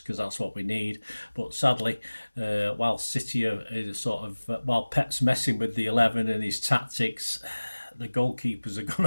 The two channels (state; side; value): inverted; both; correlation -1.00